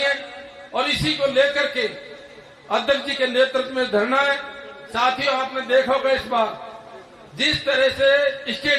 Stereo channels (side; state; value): both; identical; correlation 1.00